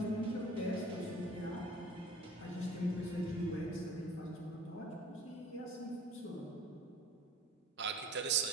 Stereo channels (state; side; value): normal; both; correlation 0.46